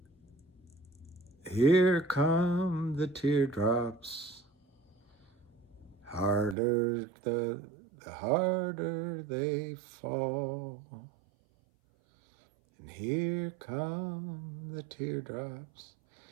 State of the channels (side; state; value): left; drops out; at 6.6 s